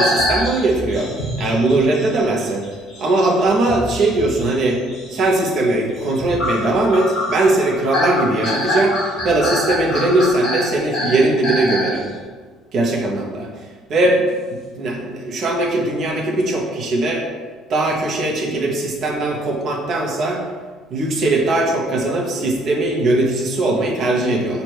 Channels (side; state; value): both; normal; correlation 0.65